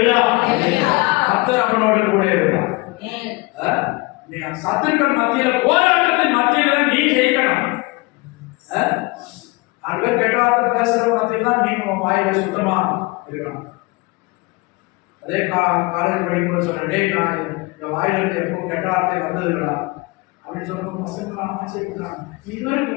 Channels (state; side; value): quieter; right; 24.4 dB